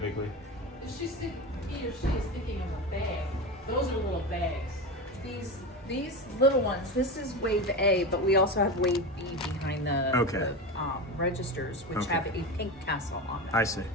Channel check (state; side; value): normal; both; correlation 0.22